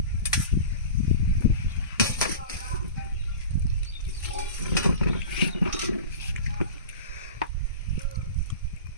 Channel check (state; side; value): inverted; both; correlation -0.35